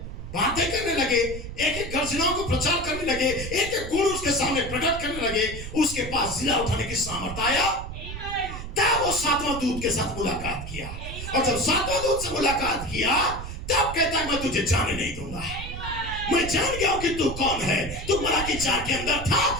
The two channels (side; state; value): right; noise; rumble, 8 dB below the sound